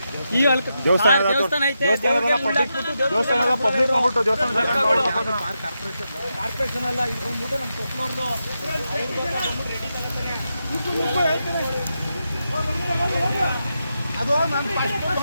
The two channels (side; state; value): both; inverted; correlation -0.86